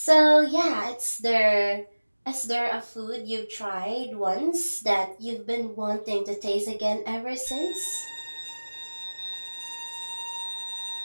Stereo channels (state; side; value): inverted; both; correlation -1.00